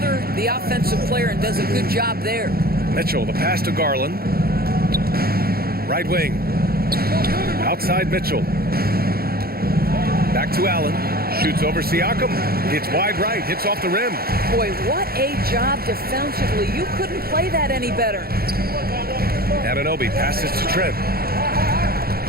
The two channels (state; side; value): late; left; 0.44 ms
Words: the offensive player and does a good job there. Mitchell, the pass to Garland. Right wing. Outside Mitchell. Back to Allen. Shoots over Siakam. Hits wide right. Hits off the rim. Boy, what a job defensively. You couldn't play that any better. Anunoby passes to Trent.